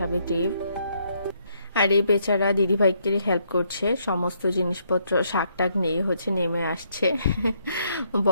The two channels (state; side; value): inverted; both; correlation -0.73